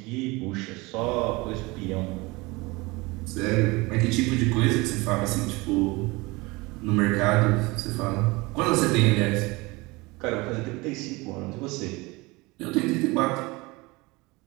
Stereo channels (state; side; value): quieter; left; 23.8 dB